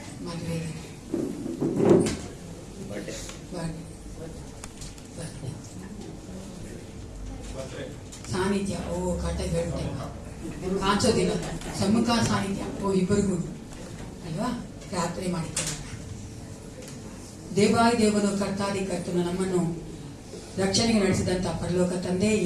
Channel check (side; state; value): both; identical; correlation 1.00